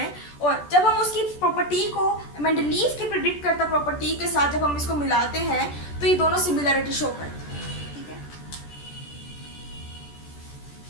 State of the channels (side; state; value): right; late; 14 ms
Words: और जब हम उसकी प्रॉपर्टी को मेंडलीव की प्रिडिक्ट करता प्रॉपर्टी के साथ जब हम इसको मिलाते हैं तो ये दोनों सिमिलरिटी शो करते हैं। ठीक है,